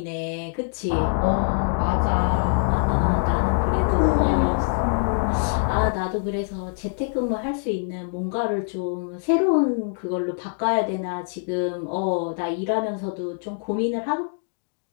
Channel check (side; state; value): right; silent; digital silence